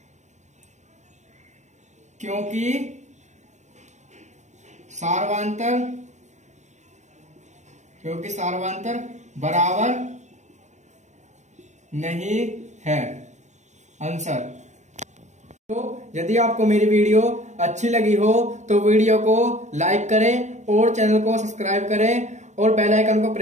क्योंकि सार्वंतर बराबर नहीं है। आंसर। तो यदि आपको मेरी वीडियो अच्छी लगी हो तो वीडियो को लाइक करें और चैनल को सब्सक्राइब करें और बेल आइकन को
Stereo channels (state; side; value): late; left; 0.34 ms